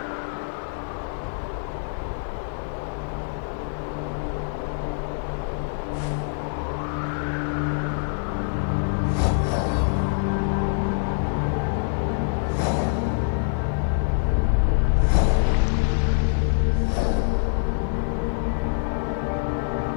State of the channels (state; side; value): silent; right; digital silence